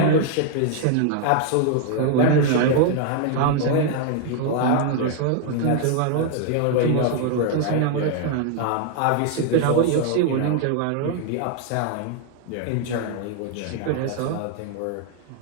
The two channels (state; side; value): different; both; correlation 0.00